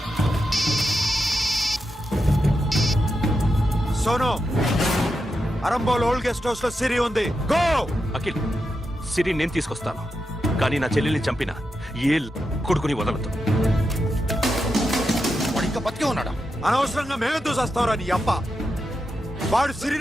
Sono, Arambol old guest house లో సిరి ఉంది. గో. అఖిల్ సిరి నేను తీసుకొస్తాను కానీ నా చెల్లెల్ని చంపిన ఏ కొడుకుని వదలదు. వాడు ఇంకా బతికే ఉన్నాడా? అనవసరంగా మేమెందుకు చేస్తావురా నీ అప్ప? వాడు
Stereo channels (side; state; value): both; normal; correlation 0.87